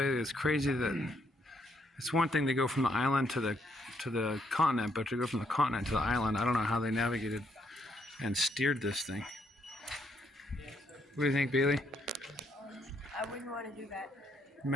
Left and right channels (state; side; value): normal; both; correlation 0.73